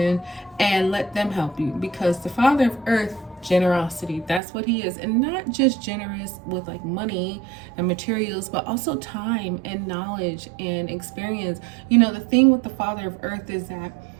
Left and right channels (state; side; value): drops out; left; at 4.4 s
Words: and let them help you, because the Father of Earth, generosity, that's what he is. And not just generous with like money and materials, but also time and knowledge and experience. The thing with the Father of Earth is that